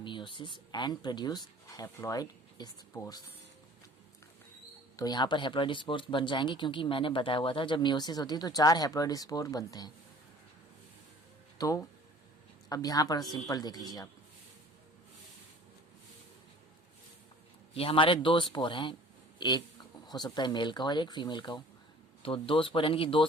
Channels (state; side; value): normal; both; correlation 0.48